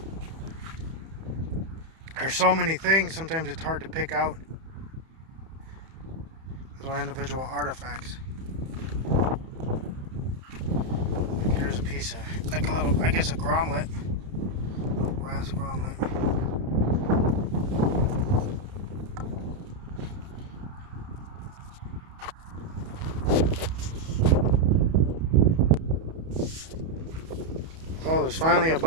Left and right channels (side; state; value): left; late; 31 ms